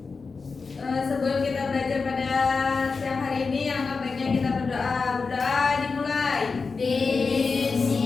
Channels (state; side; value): quieter; right; 4.6 dB